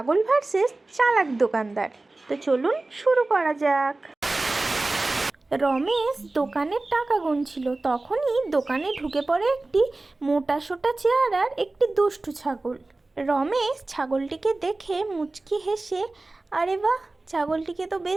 ভার্সেস চালাক দোকানদার। তো চলুন শুরু করা যাক। রমেশ দোকানের টাকা গুনছিল, তখনই দোকানে ঢুকে পড়ে একটি মোটাসোটা চেহারার একটি দুষ্টু ছাগল। রমেশ ছাগলটিকে দেখে মুচকি হেসে, আরে বাহ, ছাগলটিকে তো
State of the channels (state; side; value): quieter; left; 3.1 dB